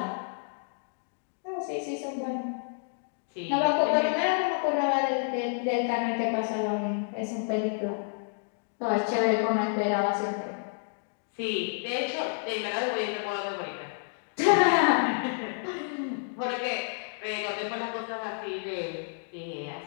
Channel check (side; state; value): right; silent; digital silence